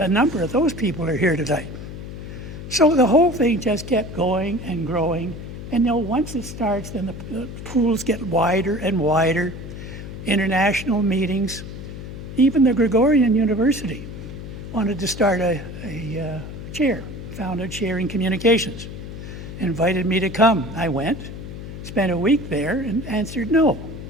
number of those people are here tonight. So the whole thing just kept going and growing. And once it starts, then the pools get wider and wider. International meetings. Even the Gregorian University wanted to start a chair, found a chair in communications. Invited me to come. I went, spent a week there, and answered no.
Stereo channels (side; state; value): left; noise; hum, 10 dB below the sound